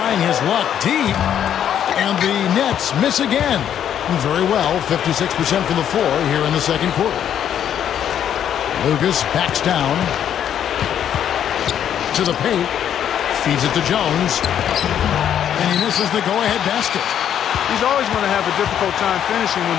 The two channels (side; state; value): right; quieter; 9.7 dB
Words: his luck deep. And the Nets miss again. Very well, 56% from the floor here in the second quarter. Lucas backs down to the paint, feeds it to Jones, and he misses the go-ahead basket. He's always going to have a difficult time finishing